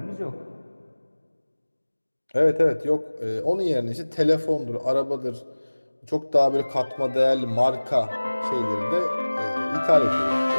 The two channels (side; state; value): both; inverted; correlation -1.00